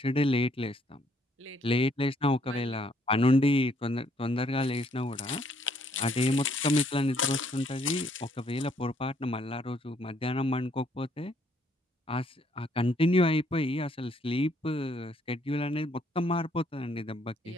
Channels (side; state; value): both; normal; correlation 0.67